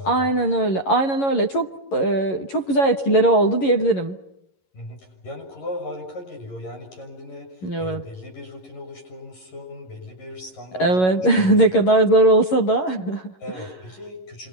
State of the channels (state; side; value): late; right; 11 ms